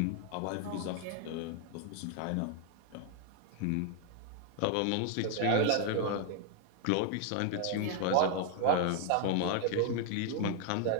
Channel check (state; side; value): different; both; correlation 0.00